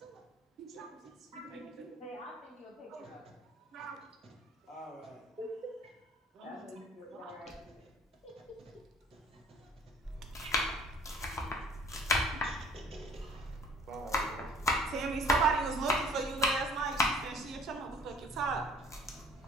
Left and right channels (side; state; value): both; normal; correlation 0.53